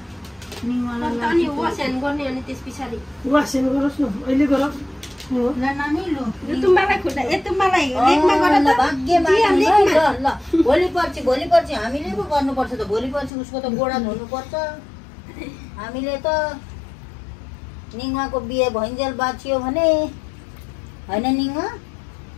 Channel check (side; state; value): right; drops out; at 13.3 s